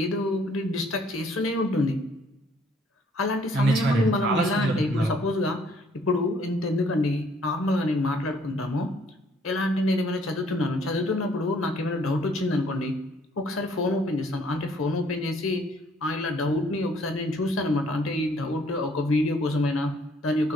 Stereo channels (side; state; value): both; normal; correlation 0.63